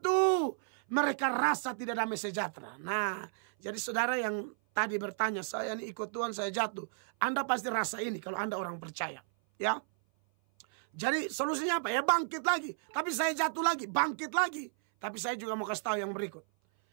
mereka rasa tidak damai sejahtera. Nah, jadi saudara yang tadi bertanya, saya ini ikut Tuhan, saya jatuh. Anda pasti rasa ini kalau Anda orang percaya. Ya. Jadi solusinya apa? Ya bangkit lagi. Tapi saya jatuh lagi, bangkit lagi. Tapi saya juga mau kasih tahu yang berikut.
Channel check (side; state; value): left; silent; 56 dB below the other